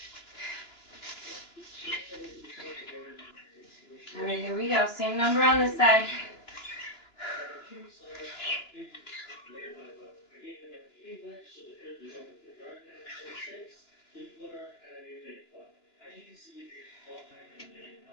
All right, here we go. Same number on this side.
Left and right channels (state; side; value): late; right; 2.9 ms